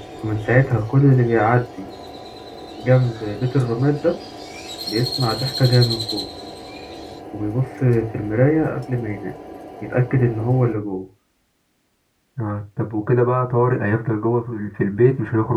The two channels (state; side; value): identical; both; correlation 1.00